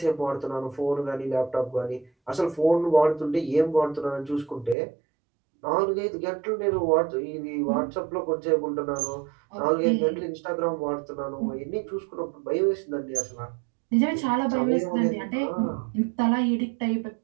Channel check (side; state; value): left; drops out; at 4.8 s